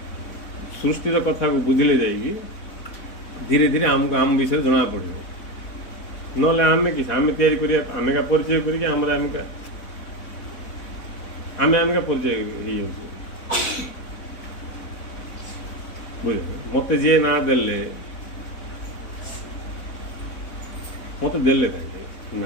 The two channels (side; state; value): right; late; 4.0 ms